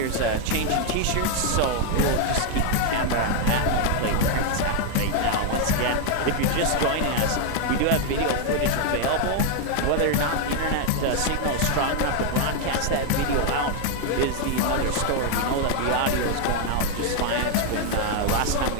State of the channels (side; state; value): both; different; correlation 0.00